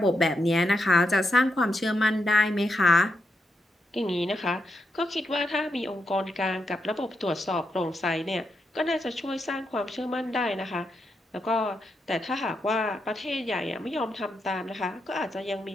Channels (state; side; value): normal; both; correlation 0.83